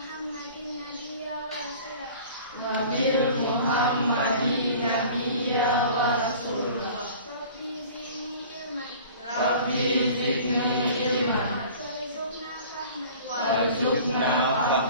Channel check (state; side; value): inverted; both; correlation -0.44